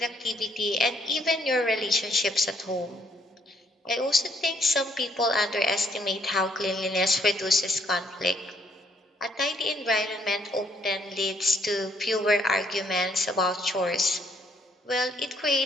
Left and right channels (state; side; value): normal; both; correlation 0.68